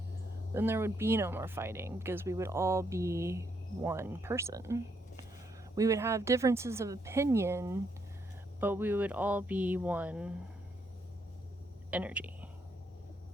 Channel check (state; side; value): normal; both; correlation 0.75